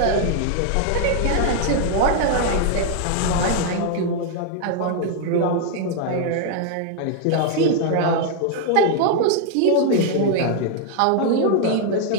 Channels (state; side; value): different; both; correlation 0.00